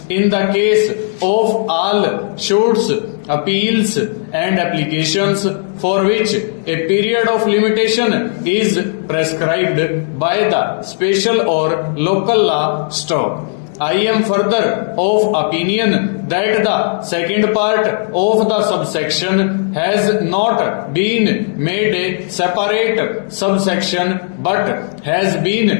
in the case of all suits, appeals and applications for which a period of limitation is prescribed by the special or local law stop. I am further of opinion that the second part of the subsection has not been made a separate subsection but has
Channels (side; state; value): right; silent; 70 dB below the other